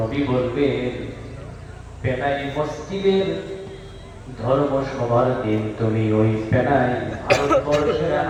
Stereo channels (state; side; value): identical; both; correlation 1.00